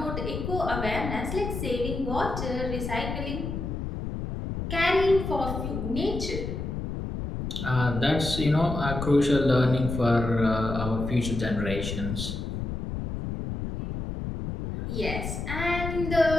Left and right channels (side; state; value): left; noise; rumble, 5 dB below the sound